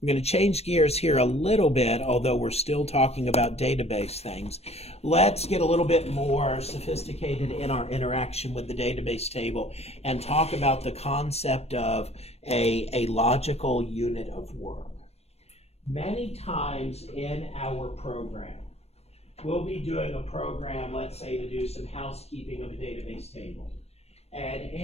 going to change gears here a little bit, although we're still talking about database things. Let's get a little bit more sophisticated in our interaction with the database table and talk about the concept of a logical unit of work. Many times in our program, we'll be doing a program, let's say, to do some housekeeping of a database table. And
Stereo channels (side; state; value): right; late; 0.30 ms